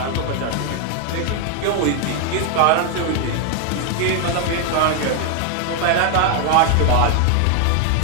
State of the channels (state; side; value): different; both; correlation 0.00